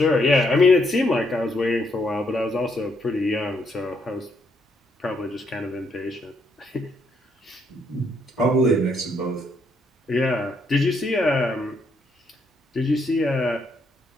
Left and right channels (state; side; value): normal; both; correlation 0.74